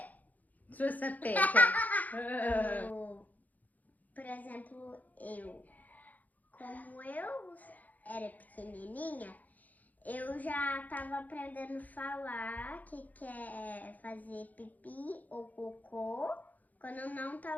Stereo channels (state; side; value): late; right; 0.080 ms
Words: Sua sapeca. Por exemplo, como eu era pequenininha, eu já tava aprendendo a falar que quer fazer pipi ou cocô quando eu não